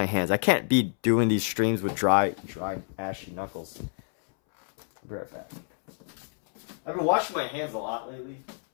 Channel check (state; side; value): silent; right; 59 dB below the other